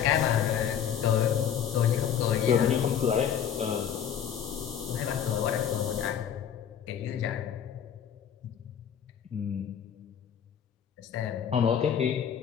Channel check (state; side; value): quieter; right; 8.8 dB